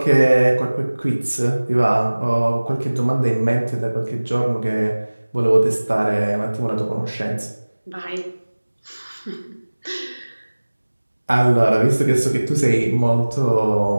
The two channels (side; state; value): both; inverted; correlation -1.00